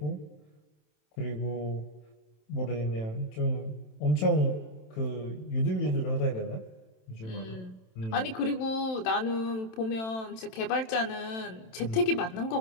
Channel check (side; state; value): right; late; 27 ms